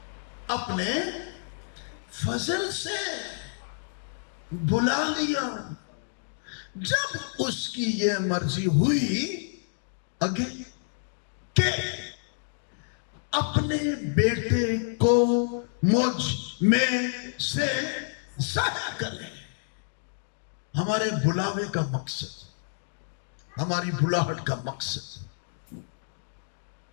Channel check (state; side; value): silent; right; digital silence